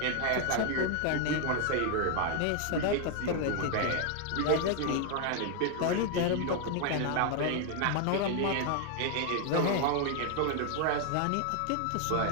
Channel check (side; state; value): both; different; correlation 0.00